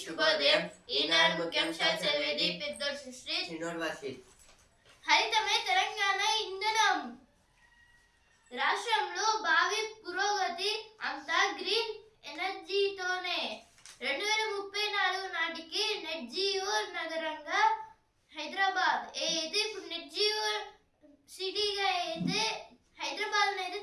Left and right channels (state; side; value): identical; both; correlation 1.00